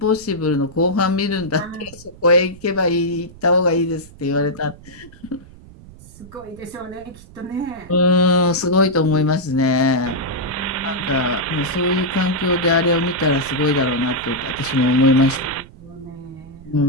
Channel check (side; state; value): right; noise; rumble, 20 dB below the sound